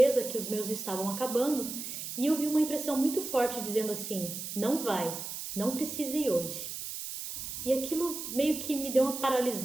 que os meus estavam acabando e eu vi uma impressão muito forte dizendo assim, não vai, não precisa ir hoje. E aquilo meio que me deu uma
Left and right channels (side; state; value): right; noise; hiss, 7 dB below the sound